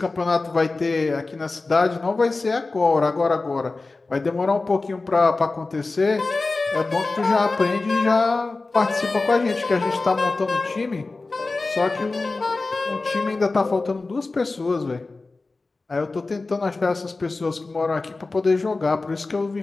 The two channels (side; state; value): right; quieter; 3.5 dB